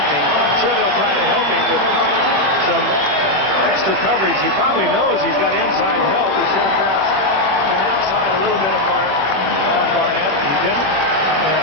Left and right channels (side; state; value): left; late; 21 ms